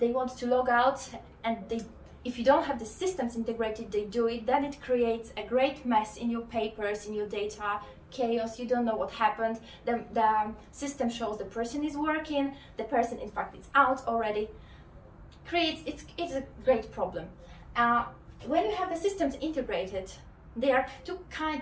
want to log out, and if you don't have the systems integrated, they do it, then it creates a great mess in your papers, in your data, chaos, you don't know what happened. The system shows the person is working, the person in fact is out already. It's a great problem. When you have the systems integrated, there are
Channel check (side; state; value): both; identical; correlation 1.00